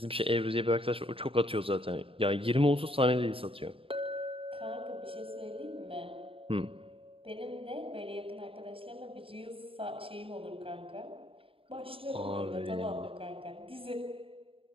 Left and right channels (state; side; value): late; left; 0.27 ms